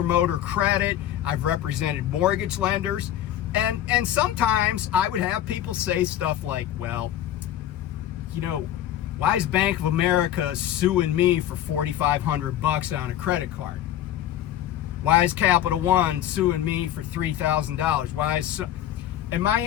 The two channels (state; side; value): quieter; right; 11.8 dB